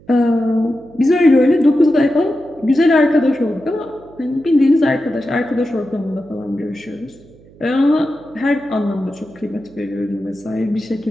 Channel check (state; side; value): noise; right; hum, 25 dB below the sound